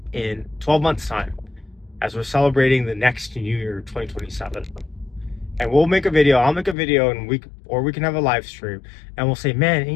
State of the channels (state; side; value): drops out; right; at 6.8 s